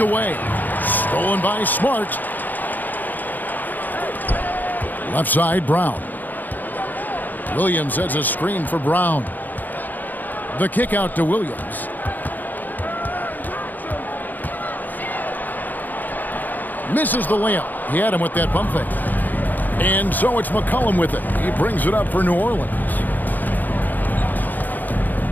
Stolen by Smart. Left side, Brown. Williams sets a screen for Brown. The kick out to Williams. Misses the layup. He had him with that pump fake. And so it's McCollum with it. He brings it up for New Orleans.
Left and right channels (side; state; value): right; late; 0.085 ms